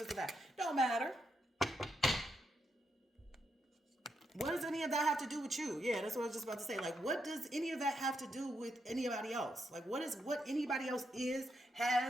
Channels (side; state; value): both; normal; correlation 0.81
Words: a that. Don't matter. What does any of that have to do with you? Yeah, that's what I was just about to say. Like, what does any of that have to do with anybody else? Like, what anybody else